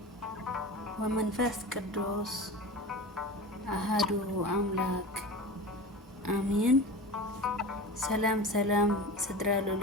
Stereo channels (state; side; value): normal; both; correlation 0.31